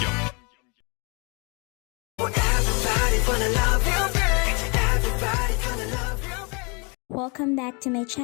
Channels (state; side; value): quieter; right; 31.5 dB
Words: Welcome back to my